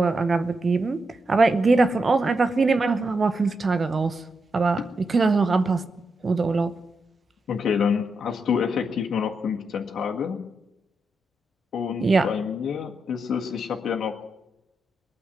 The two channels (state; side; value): normal; both; correlation 0.84